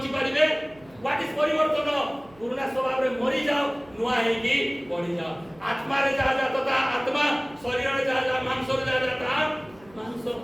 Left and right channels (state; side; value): noise; right; hum, 26 dB below the sound